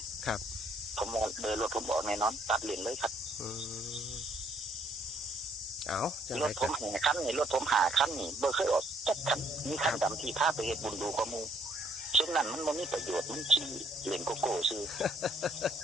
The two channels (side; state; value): both; normal; correlation 0.63